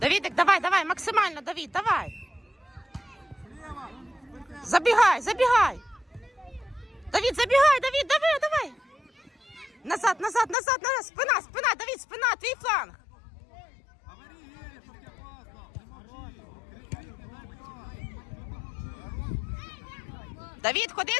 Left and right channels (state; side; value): drops out; right; at 10.6 s